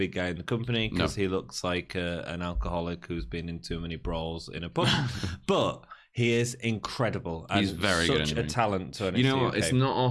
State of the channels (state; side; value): identical; both; correlation 1.00